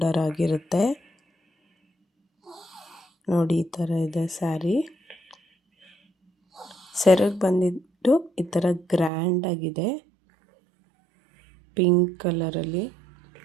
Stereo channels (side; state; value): left; drops out; at 9.1 s